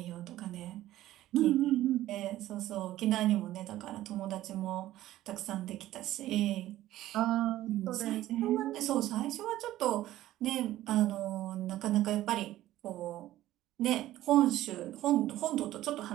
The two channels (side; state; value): left; quieter; 14.6 dB